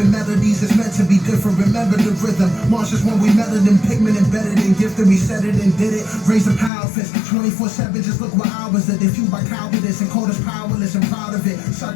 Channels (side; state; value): right; drops out; at 6.7 s